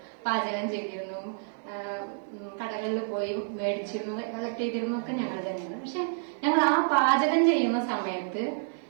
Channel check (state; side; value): silent; left; 58 dB below the other